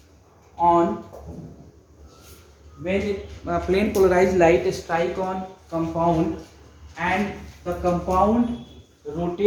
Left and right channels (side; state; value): both; identical; correlation 1.00